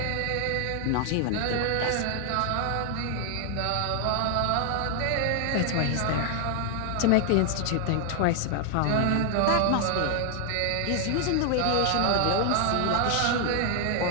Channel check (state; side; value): different; both; correlation 0.00